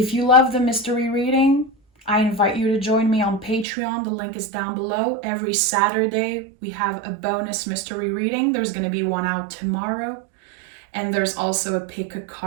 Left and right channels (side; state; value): left; drops out; at 3.7 s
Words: you love the mystery reading, I invite you to join me on Patreon. The link is down below. Every Saturday, we have a bonus mystery reading. There's going to be one out tomorrow. And there's also a pick a